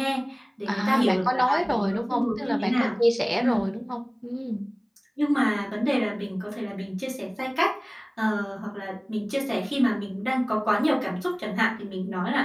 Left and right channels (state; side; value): identical; both; correlation 1.00